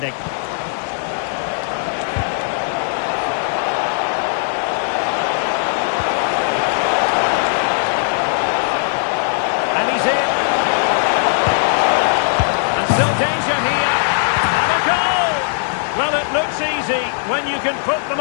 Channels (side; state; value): right; silent; digital silence